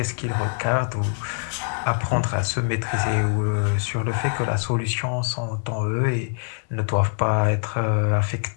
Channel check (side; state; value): right; silent; 63 dB below the other